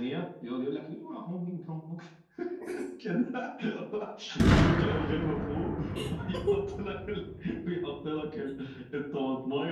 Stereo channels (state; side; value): identical; both; correlation 1.00